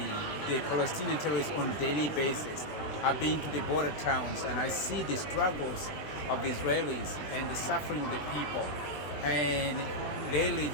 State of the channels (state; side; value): late; right; 20 ms